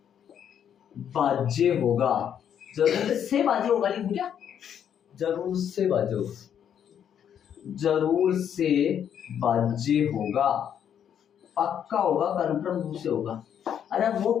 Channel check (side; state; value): right; quieter; 9.0 dB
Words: भाज्य होगा। जरूर से भाज्य होगा, लिखूं क्या? जरूर से भाज्य होगा, जरूर से भाज्य होगा, पक्का होगा, कन्फर्म रूप से होगा। अरे वो